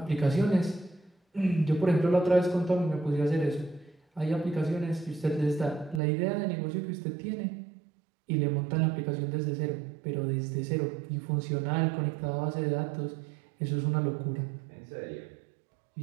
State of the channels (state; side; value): drops out; left; at 6.0 s